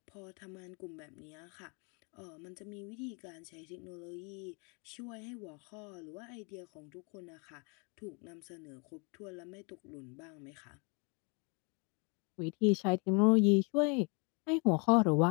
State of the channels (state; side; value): quieter; right; 33.7 dB